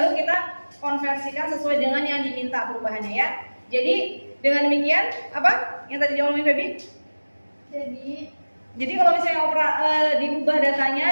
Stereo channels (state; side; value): inverted; both; correlation -1.00